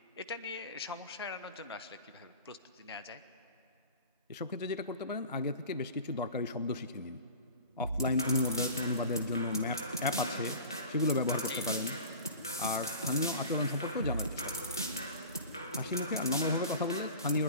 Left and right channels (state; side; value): inverted; both; correlation -0.38